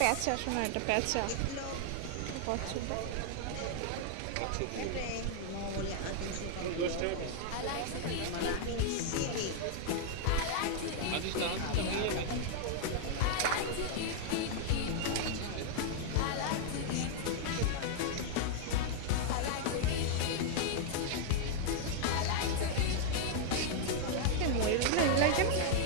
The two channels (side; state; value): both; different; correlation 0.00